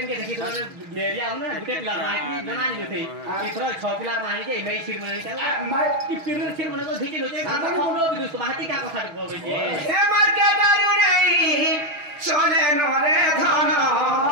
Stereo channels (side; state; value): left; late; 6.3 ms